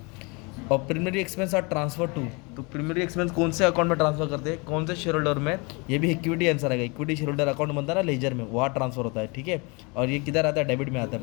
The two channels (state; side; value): quieter; right; 29.4 dB